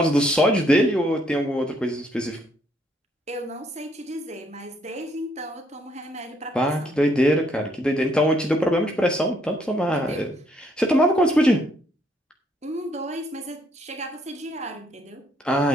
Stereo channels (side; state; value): both; normal; correlation 0.69